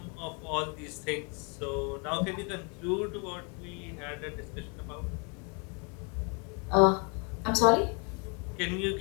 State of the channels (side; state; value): right; quieter; 34.9 dB